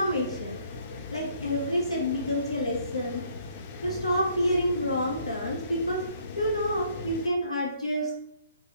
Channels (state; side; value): inverted; both; correlation -0.64